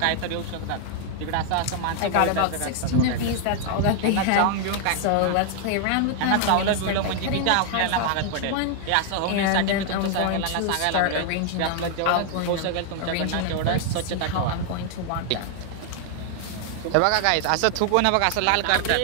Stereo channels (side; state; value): both; different; correlation 0.00